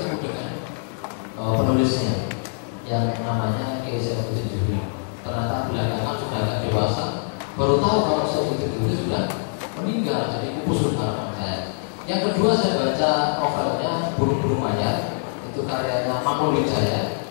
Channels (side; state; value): right; silent; digital silence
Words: dengan penulisnya yang namanya Kiai Saifuddin Zuhri. Ternyata belakangan sudah agak dewasa, baru tahu kalau Saifuddin Zuhri sudah meninggal, jadi pupus harapan saya. Yang kedua saya baca novelnya Burung-Burung Mayat, itu karyanya Manul Wijaya.